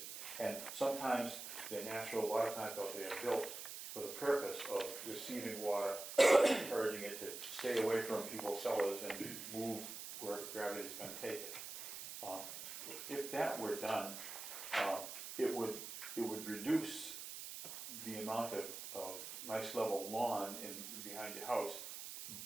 And sometimes they're natural, a lot of times they are built for the purpose of receiving water, encouraging it to stay away from people's cellars and move where gravity is gonna take it. If that were done, it would reduce the amount of nice level lawn behind your house,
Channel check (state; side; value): noise; right; hiss, 8 dB below the sound